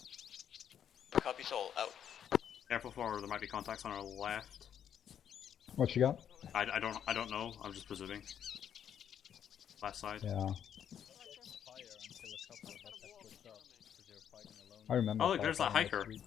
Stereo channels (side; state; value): right; quieter; 9.0 dB